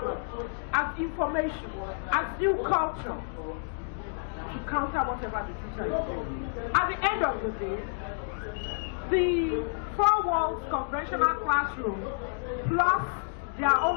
as information, as new culture, to counter whatever the teacher is doing. At the end of the day, the 4 walls conventional classroom plus their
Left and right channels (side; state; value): right; silent; digital silence